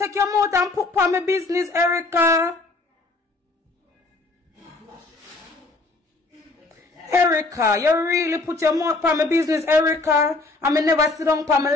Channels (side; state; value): right; quieter; 3.3 dB